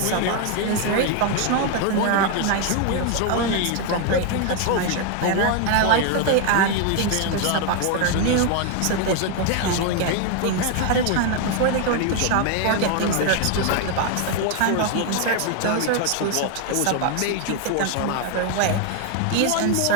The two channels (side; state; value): both; different; correlation 0.00